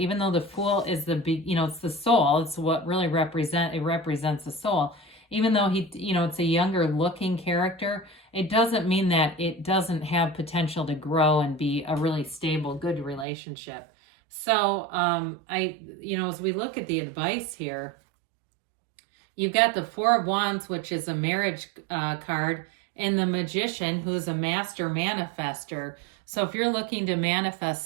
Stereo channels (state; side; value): drops out; left; at 13.2 s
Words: though the Fool is it's the soul. It's what really represents the soul. Even though it's a younger looking character, it doesn't mean that it doesn't have potential to grow and be a really stable, good relationship. So, as we look at the advice here, you've got the 4 of Wands, which is a marriage card, and the Magician, who's a master manifester. So if you're looking to manifest